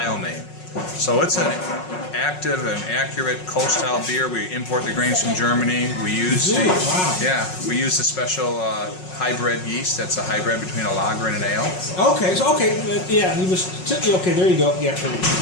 name. So it's an active and accurate Kolsch-style beer. We import the grains from Germany. We use we use the special hybrid yeast. That's a hybrid between a lager and an ale. Okay, so okay, there you go. Yeah, there you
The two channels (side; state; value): right; late; 5.5 ms